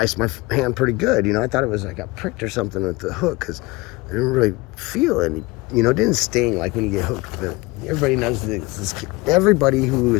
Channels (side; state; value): right; quieter; 22.5 dB